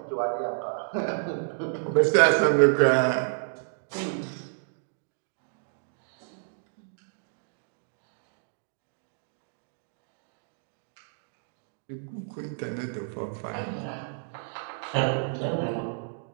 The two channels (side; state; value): left; silent; digital silence